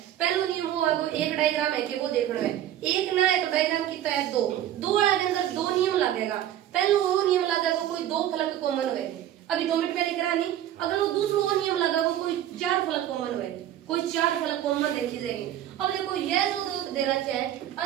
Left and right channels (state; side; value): quieter; left; 11.8 dB